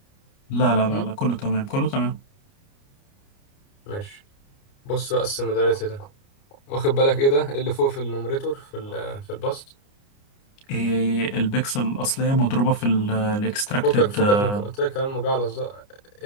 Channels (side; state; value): right; late; 29 ms